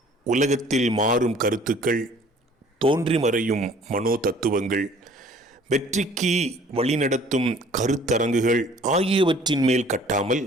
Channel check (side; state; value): both; normal; correlation 0.54